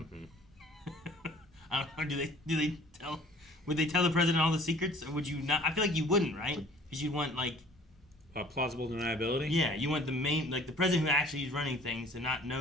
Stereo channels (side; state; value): both; normal; correlation 0.51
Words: Mm-hmm. I don't know. Would they tell the president all the secrets, or would you not? I feel like you wouldn't, right? Because you'd want like plausible deniability. Yeah, you want the main, like the president who actually is running things to not